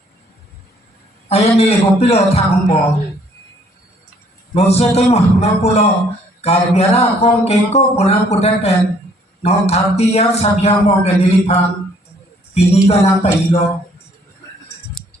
ayo nilai kopilo thang bo, non situ mah napulo karbiara kong keko punar pudak pen, non thati ya sabiang bo ke nilipan, pini ka nang pailo.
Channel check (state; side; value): normal; both; correlation 0.63